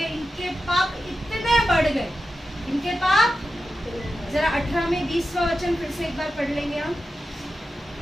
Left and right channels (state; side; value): normal; both; correlation 0.91